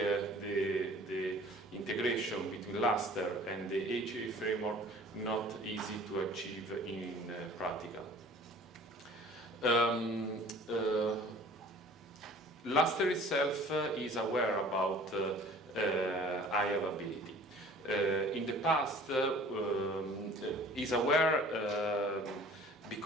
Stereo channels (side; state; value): both; normal; correlation 0.48